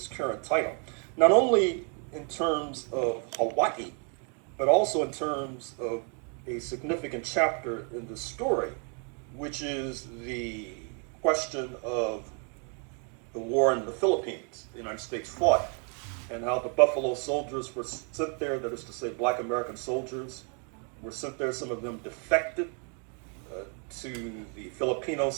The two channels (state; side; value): quieter; left; 39.1 dB